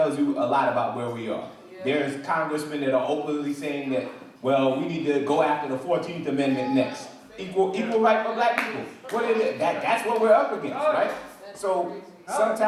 you a lot about where we are. There's congressmen that are openly saying that, well, we need to go after the 14th Amendment next. Equal right for black people. What is it? That's what we're up against, right? So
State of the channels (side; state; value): both; identical; correlation 1.00